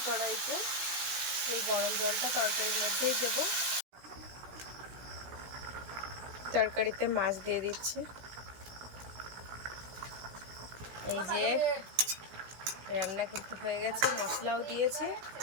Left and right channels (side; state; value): left; late; 17 ms